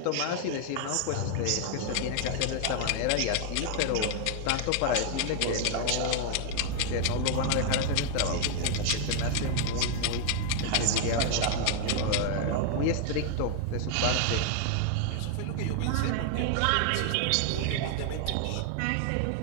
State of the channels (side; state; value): both; different; correlation 0.00